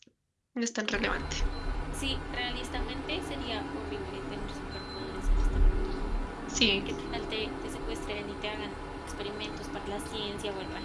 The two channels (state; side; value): identical; both; correlation 1.00